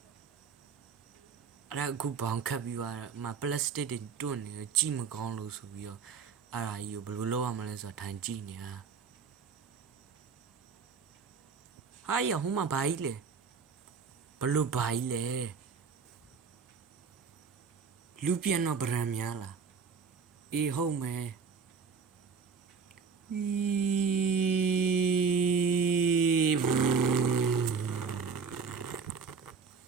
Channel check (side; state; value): left; quieter; 5.7 dB